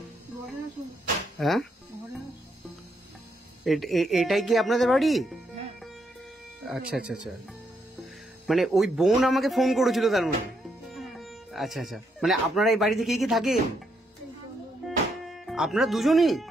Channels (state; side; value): normal; both; correlation 0.77